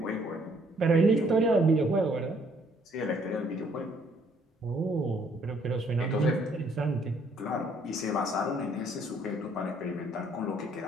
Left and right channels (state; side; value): normal; both; correlation 0.65